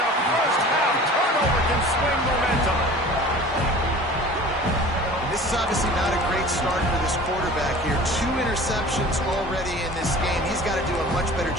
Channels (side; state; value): both; normal; correlation 0.42